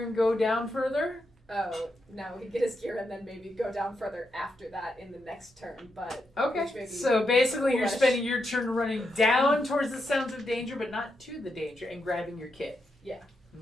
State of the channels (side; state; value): both; normal; correlation 0.84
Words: and go down further? Oh, no, he'd get his gear and then maybe go down further after that in the next turn, but... which may Okay. be So basically, you're foolish. spending your turn running down towards the sounds of danger, but not to the danger, and grabbing your kit. Yeah.